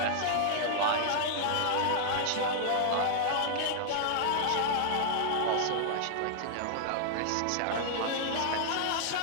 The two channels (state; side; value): different; both; correlation -0.01